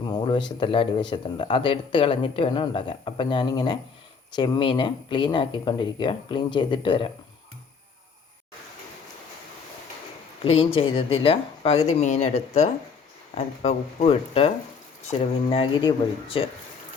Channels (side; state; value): right; quieter; 5.4 dB